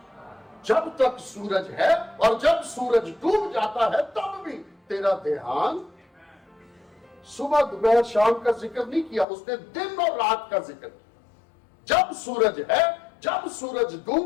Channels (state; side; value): drops out; right; at 9.2 s